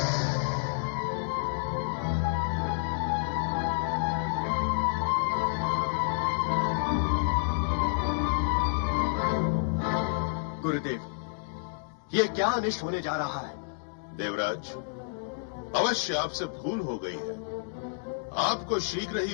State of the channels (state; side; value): silent; right; digital silence